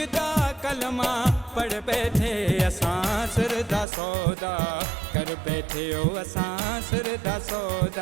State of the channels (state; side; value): drops out; left; at 3.9 s